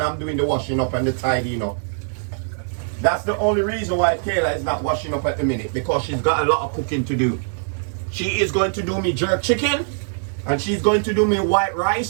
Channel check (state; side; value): silent; left; digital silence